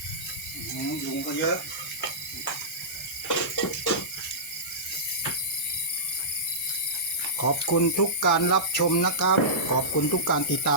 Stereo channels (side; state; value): right; noise; hiss, 14 dB below the sound